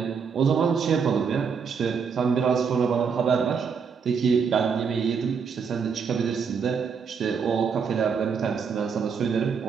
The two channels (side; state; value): left; quieter; 6.1 dB